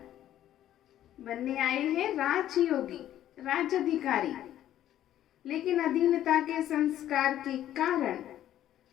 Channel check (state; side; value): quieter; right; 12.1 dB